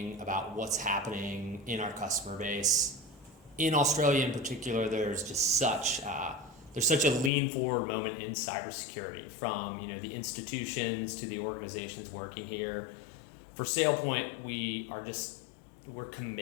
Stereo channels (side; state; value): right; drops out; at 7.3 s